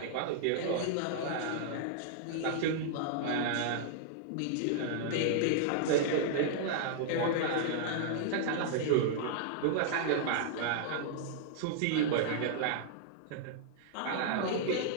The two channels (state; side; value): different; both; correlation -0.01